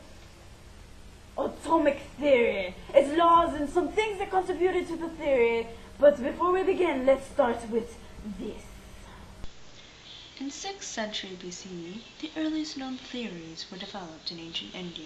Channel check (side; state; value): both; identical; correlation 1.00